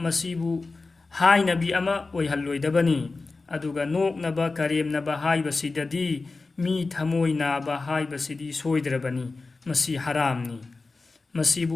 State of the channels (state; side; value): quieter; right; 3.7 dB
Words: मसिबु हायनबी अमा ओइहल्लोइदबनी अदुगा नोकनबा करेमनबा हायबसिददी मी थमोय नाबा हायबसिदी सोइद्रबनी मसी हरामनी